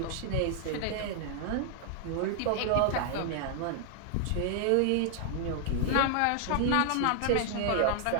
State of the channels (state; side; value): different; both; correlation 0.00